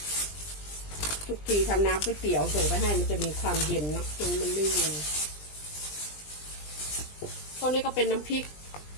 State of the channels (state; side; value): late; right; 20 ms